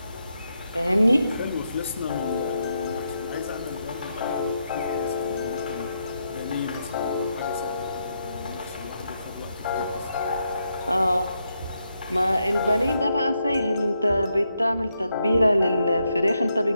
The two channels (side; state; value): both; inverted; correlation -0.81